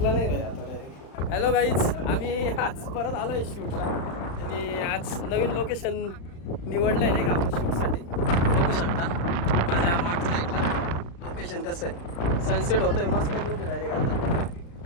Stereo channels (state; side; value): late; right; 35 ms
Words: नाही भाई आता डायरेक्ट. हॅलो गाईज, आम्ही आज परत आलो आहे शूटला. आणि आज नवीन लोकेशन निवडलं आहे नाही का आपण शूटसाठी. बघू शकता माझ्या मागच्या साईडला लोकेशन कसं आहे. सनसेट होतोय मस्त लुक डायरेक्ट आता.